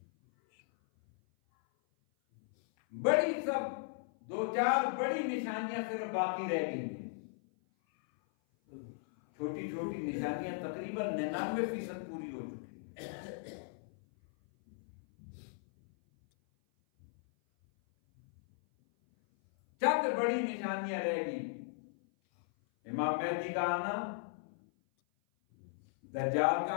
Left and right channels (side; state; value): right; silent; 53 dB below the other